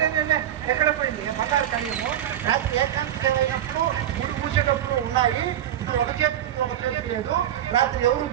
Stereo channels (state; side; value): quieter; left; 11.3 dB